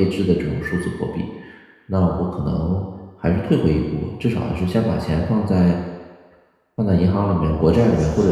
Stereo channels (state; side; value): identical; both; correlation 1.00